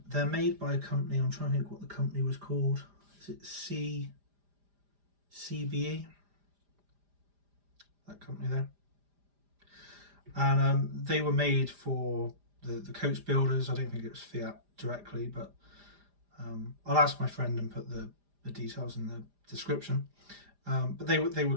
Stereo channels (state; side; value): late; left; 5.0 ms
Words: They're made by a company. I'm trying to think what the company was called. Is it CBE? That company there. And they were made for the coach builders. I don't think it was Fiat directly, but I'll ask my friend and put the details in the description. But they were